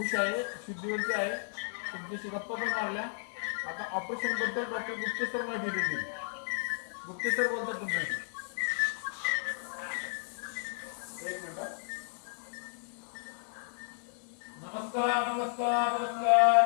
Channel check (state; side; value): silent; right; 56 dB below the other